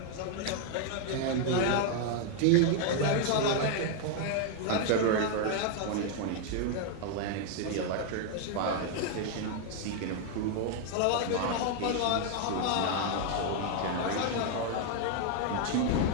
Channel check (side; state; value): both; different; correlation 0.00